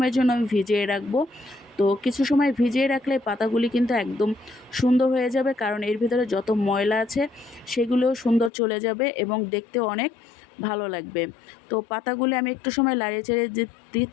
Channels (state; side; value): drops out; right; at 8.5 s